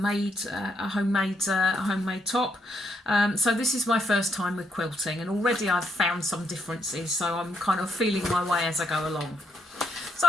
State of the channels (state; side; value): normal; both; correlation 0.76